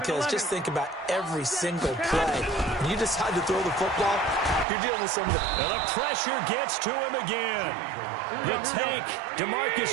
just think about every single play. When you decide to throw the football, you're dealing with some of the... And the pressure gets to him again. The tank,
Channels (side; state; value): left; drops out; at 4.7 s